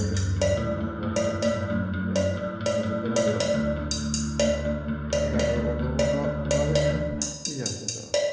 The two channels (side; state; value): both; identical; correlation 1.00